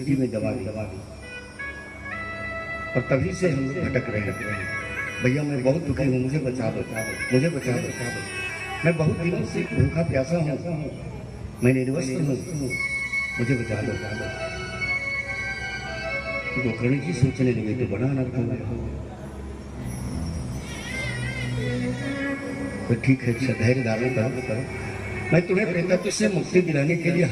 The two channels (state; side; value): identical; both; correlation 1.00